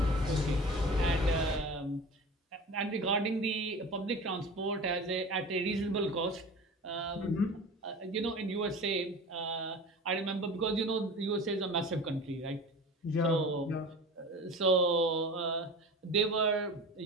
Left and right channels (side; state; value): both; normal; correlation 0.35